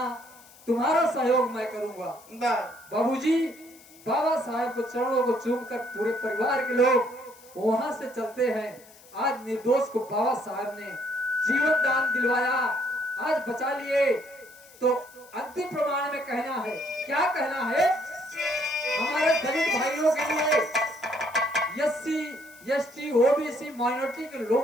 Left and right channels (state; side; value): noise; left; hiss, 24 dB below the sound